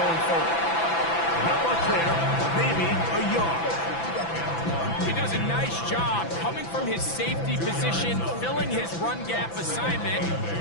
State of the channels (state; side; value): late; right; 6.0 ms